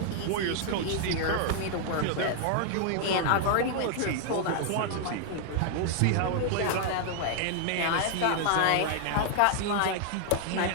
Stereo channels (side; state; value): both; different; correlation 0.00